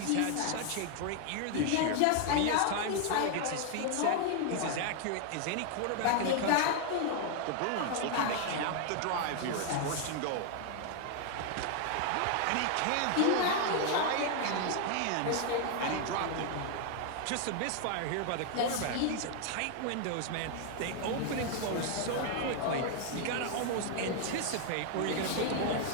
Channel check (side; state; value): both; different; correlation 0.00